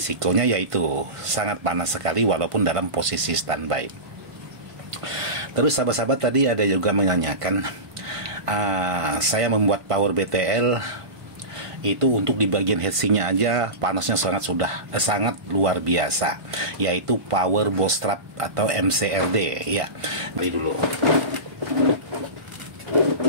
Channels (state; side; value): late; left; 1.5 ms